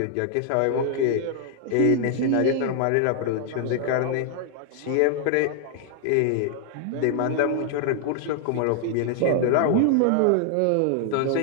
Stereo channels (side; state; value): both; different; correlation 0.00